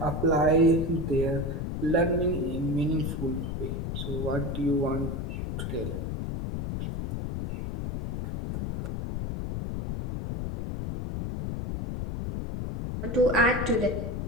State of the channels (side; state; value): left; noise; rumble, 3 dB below the sound